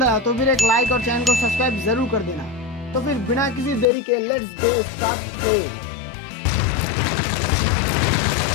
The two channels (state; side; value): drops out; right; at 3.9 s